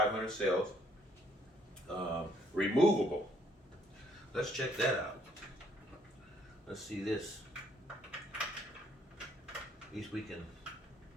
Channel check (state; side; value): normal; both; correlation 0.67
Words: cells, removable. Let's check that out. Let's see this. At least we can